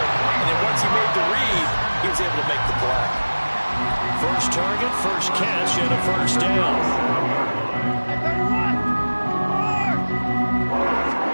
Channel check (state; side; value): inverted; both; correlation -1.00